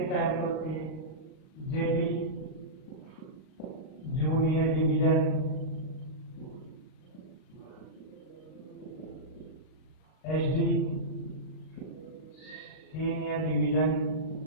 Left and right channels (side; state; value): right; late; 39 ms